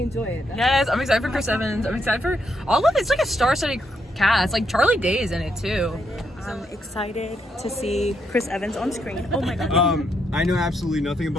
it. Yes, I'm excited for Chris Evans. I'm excited for all of it. It's like a star-studded cast. Like Charlie Day is in it too. I'm excited to see Chris Evans on screen. Oh my god. I know absolutely nothing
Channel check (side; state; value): both; normal; correlation 0.78